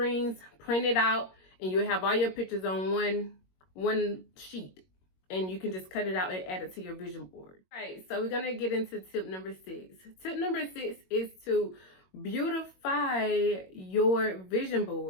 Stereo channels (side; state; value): right; late; 21 ms